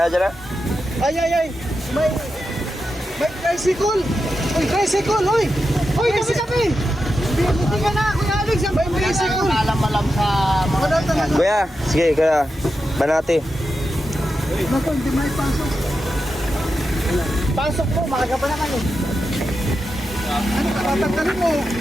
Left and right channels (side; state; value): both; normal; correlation 0.89